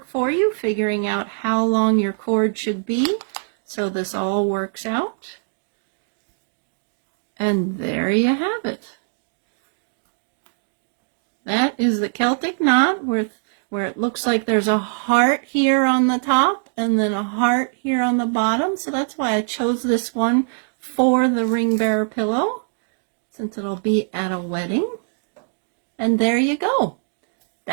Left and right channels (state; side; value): silent; left; digital silence